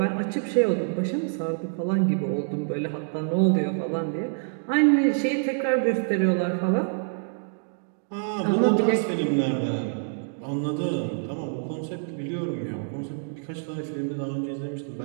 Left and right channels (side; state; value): left; silent; digital silence